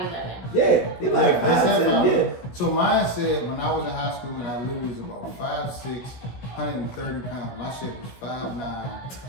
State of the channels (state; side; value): late; right; 17 ms